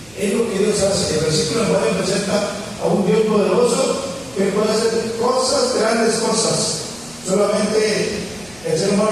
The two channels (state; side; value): noise; right; rumble, 26 dB below the sound